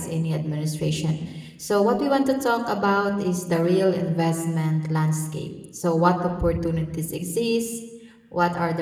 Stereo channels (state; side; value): identical; both; correlation 1.00